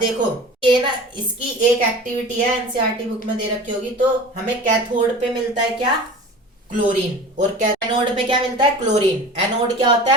ये ना, इसकी एक एक्टिविटी है, एनसीईआरटी बुक में दे रखी होगी। तो हमें कैथोड पे मिलता है क्या? क्लोरीन। और एनोड पे क्या मिलता है? क्लोरीन। एनोड क्या होता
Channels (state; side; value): normal; both; correlation 0.38